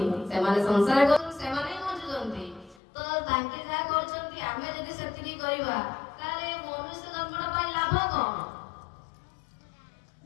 से माने संसार कर से माने बंचुछंती तो तांके जा करछंती आमे जदि सेतिकी करिबा ताले मनुष्य जन्मटा पाई लाभ कोन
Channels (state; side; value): drops out; right; at 2.8 s